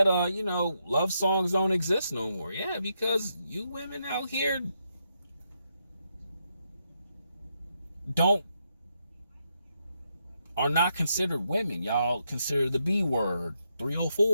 you know, love songs don't exist no more. Yeah, because you women out here are not considered women. Y'all consider the B word,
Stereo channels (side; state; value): both; inverted; correlation -0.81